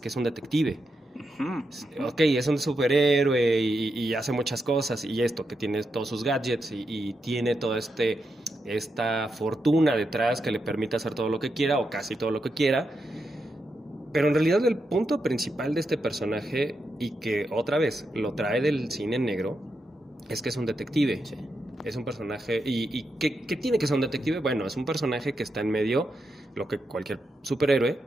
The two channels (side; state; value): both; normal; correlation 0.85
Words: es un detective. Ok, es un superhéroe y hace muchas cosas y esto, que tiene todos sus gadgets y tiene toda esta fortuna detrás que le permite hacer todo lo que quiera o casi todo lo que quiera. Pero en realidad el punto principal de este personaje, y que otra vez lo trae del cine negro, es que es un detective. Sí. Es un personaje... ¿Y qué tiene que ser un detective? Bueno, es un personaje que está en medio, lo que cualquier superhéroe,